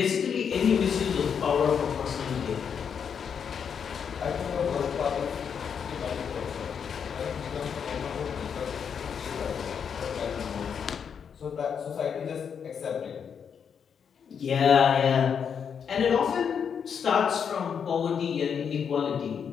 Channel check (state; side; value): quieter; right; 7.2 dB